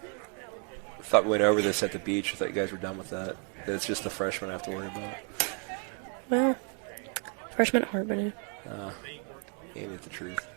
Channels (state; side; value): quieter; left; 39.2 dB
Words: thought we went over this at the beach. I thought you guys were done with that. That it's just the freshmen I have to worry about. Well, freshman at Harbin. Ain't it the truth?